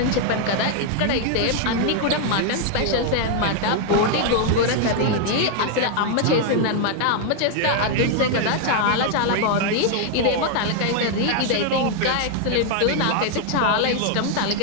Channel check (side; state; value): both; different; correlation 0.00